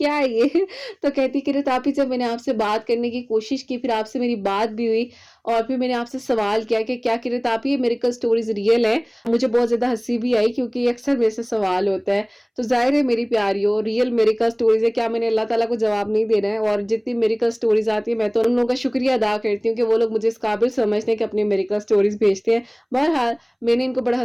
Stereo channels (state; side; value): identical; both; correlation 1.00